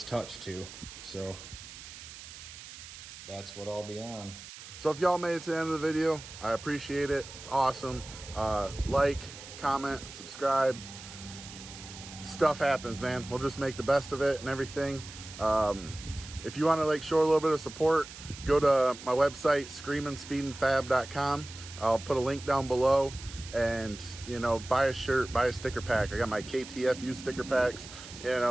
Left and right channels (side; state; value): right; noise; hiss, 14 dB below the sound